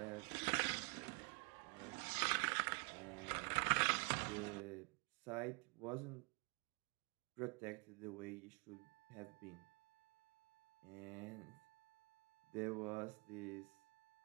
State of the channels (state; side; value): quieter; left; 31.6 dB